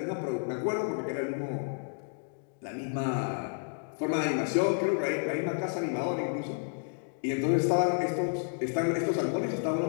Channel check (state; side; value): silent; right; digital silence